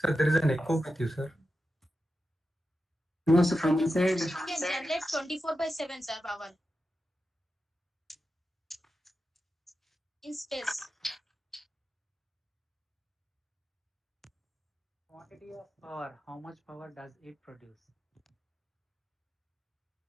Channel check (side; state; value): both; normal; correlation 0.90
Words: there is an echo with you, sir. No, so from inside. It can generate 24/7, sir, power. In space. Quantity of power, how much power does it produce?